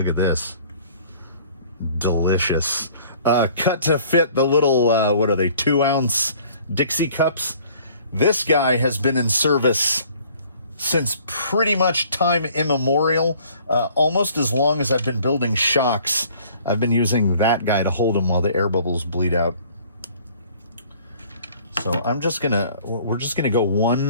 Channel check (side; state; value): both; inverted; correlation -0.55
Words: at this. Delicious. Cut to fit the little, what are they, 2-ounce Dixie cups. This guy has been in service since pretty much time immemorial. Almost as long as I've been building shocks, I've been using that guy to hold them while the air bubbles bleed out. So we're just gonna go